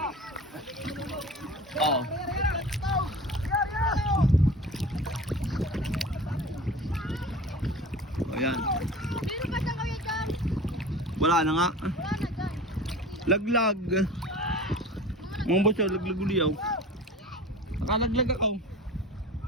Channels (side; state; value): both; normal; correlation 0.38